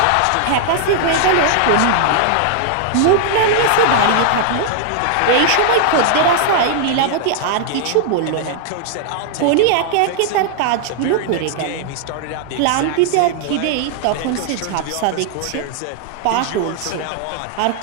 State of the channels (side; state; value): both; different; correlation -0.01